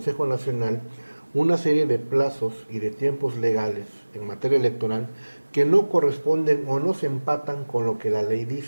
Nacional una serie de plazos y de tiempos legales en materia electoral que no corresponden o no se empatan con lo que la ley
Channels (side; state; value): both; inverted; correlation -1.00